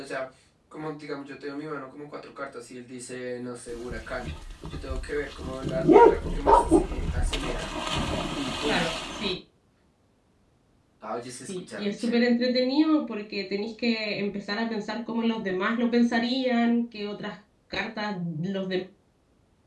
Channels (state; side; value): identical; both; correlation 1.00